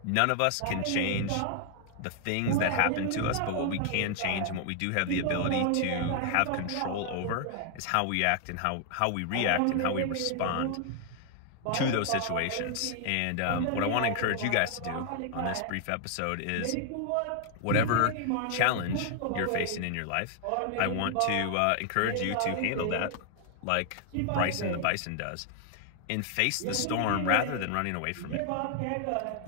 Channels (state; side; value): different; both; correlation 0.00